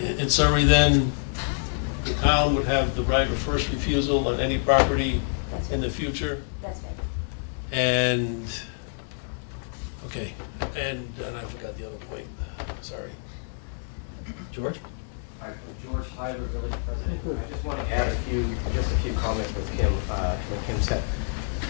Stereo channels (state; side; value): silent; right; digital silence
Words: then, the town would have the right of first refusal on any property in the future? That's right. And, okay, and I forgot the other point, sorry. George? Hi, George Hyder, Village President. I just want to add just a few comments with Kim, what Kim said.